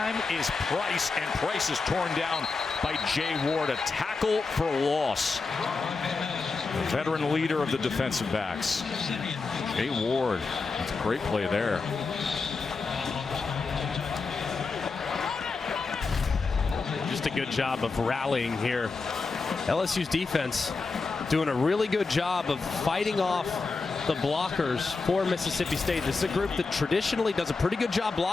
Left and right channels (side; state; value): right; quieter; 4.3 dB